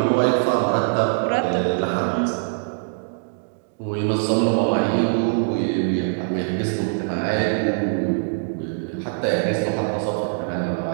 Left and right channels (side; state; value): left; silent; digital silence